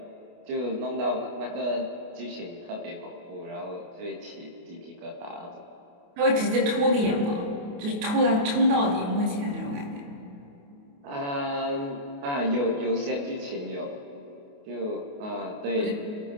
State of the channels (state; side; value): late; left; 28 ms